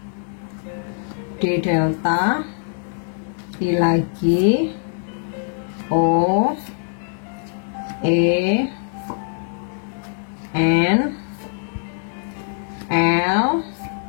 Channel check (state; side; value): silent; right; 61 dB below the other